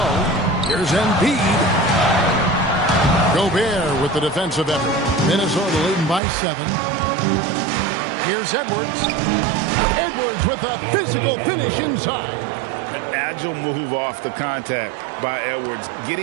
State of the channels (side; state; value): left; drops out; at 6.2 s